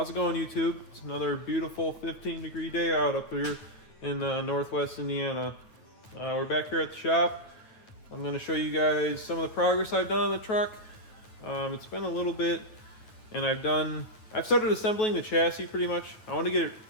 it going, YouTube? It's another beautiful 15-degree day out up here in Northwest Indiana. We're back here at the shop. I'm going to show you guys some of the progress I've done on the truck. It's been a little bit, and I've started assembling the chassis pretty much. I want to get it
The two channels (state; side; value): late; right; 9.1 ms